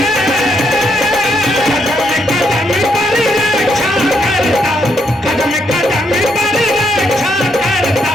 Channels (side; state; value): both; normal; correlation 0.76